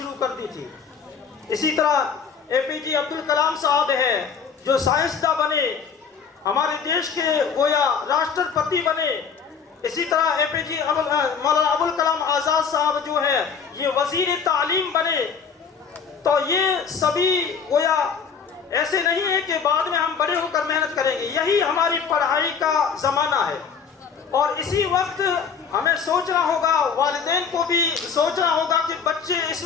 कर दी थी। इसी तरह एपीजे अब्दुल कलाम साहब है जो साइंसदान बने, हमारे देश के गोया राष्ट्रपति बने। इसी तरह एपीजे मौलाना अबुल कलाम आजाद साहब जो है ये वजीर तालीम बने। तो ये सभी गोया ऐसे नहीं है कि बाद में हम बड़े होकर मेहनत करेंगे, यही हमारी पढ़ाई का जमाना है। और इसी वक्त हमें सोचना होगा, वालिदैन को भी सोचना होगा कि बच्चे इस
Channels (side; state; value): right; quieter; 6.4 dB